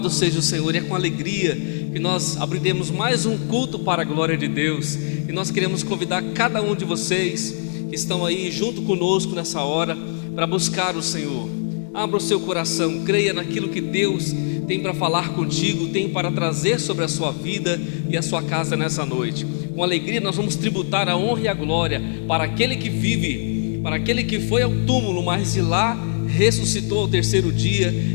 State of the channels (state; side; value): silent; right; digital silence